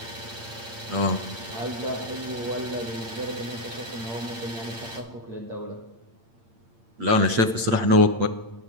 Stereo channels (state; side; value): late; left; 8.8 ms